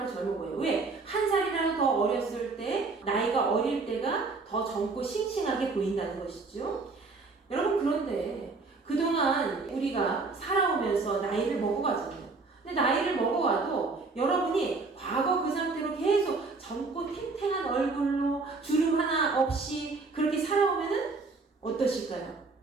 젊어 보여요. 왜? 한 살이라도 더 어렸을 때, 나이가 어릴 때가 더 젊고 싱싱하게 보인다는 것이죠. 여러분 그런데 그동안 우리가 살아오면서 나이를 먹어가잖아요. 근데 나이를 먹어와도 여러분이 과거 그 상태로 계속 젊고 탱탱한 얼굴로 주름 하나 없이 그렇게 살아오면은 어떠실까요?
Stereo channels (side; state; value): left; quieter; 4.0 dB